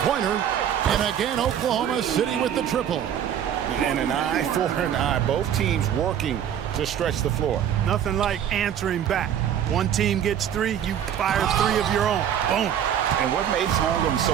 And again, Oklahoma City with the triple. And an eye for an eye. Both teams working to stretch the floor. Nothing like answering back. One team gets 3, you fire 3 of your own. Boom. And what makes Holmgren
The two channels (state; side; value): quieter; left; 9.6 dB